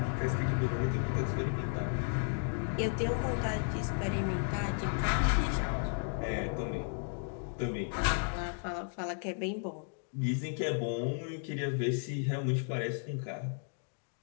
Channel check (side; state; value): right; silent; 55 dB below the other